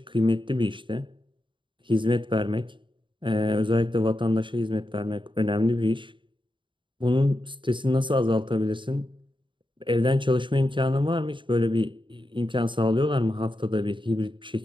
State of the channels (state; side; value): late; left; 0.24 ms